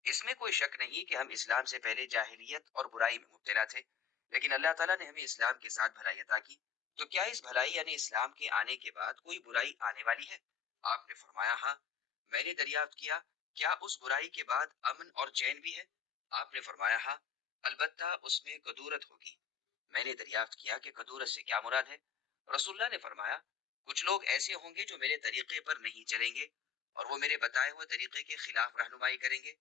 اس میں کوئی شک نہیں کہ ہم اسلام سے پہلے جاہلیت اور برائی میں مبتلا تھے، لیکن اللہ تعالیٰ نے ہمیں اسلام کے ساتھ بھلائی عطا کی، تو کیا اس بھلائی یعنی اسلام کے آنے کے بعد کوئی برائی آنے والی ہے؟ آپ نے فرمایا، ہاں۔ میں نے دریافت کیا، کیا اس برائی کے بعد امن اور چین بھی ہے؟ آپ نے فرمایا، ہاں، البتہ اس میں کدورت ہوگی۔ میں نے دریافت کیا کہ کدورت سے کیا مراد ہے؟ رسول اللہ نے فرمایا، کچھ لوگ ایسے ہوں گے جو میرے طریقے پر نہیں چلیں گے اور وہ میرے بتائے ہوئے طریقے کے خلاف رہنمائی کریں گے۔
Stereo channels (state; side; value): quieter; right; 7.6 dB